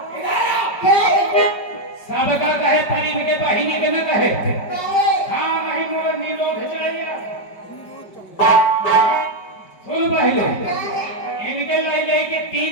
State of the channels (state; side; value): late; right; 5.1 ms